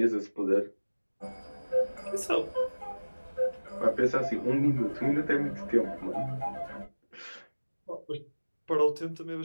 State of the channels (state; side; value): inverted; both; correlation -1.00